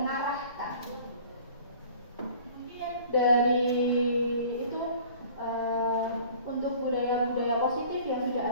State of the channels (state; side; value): inverted; both; correlation -0.48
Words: Mungkin dari itu untuk budaya-budaya positif yang sudah